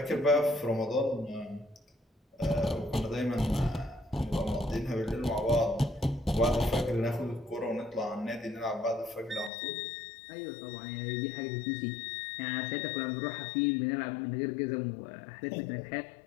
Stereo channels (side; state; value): right; drops out; at 9.5 s